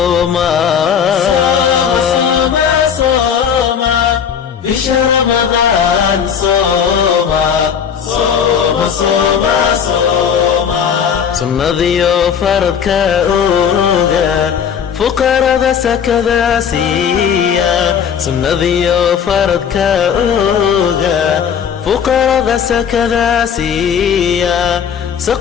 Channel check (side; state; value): right; quieter; 7.6 dB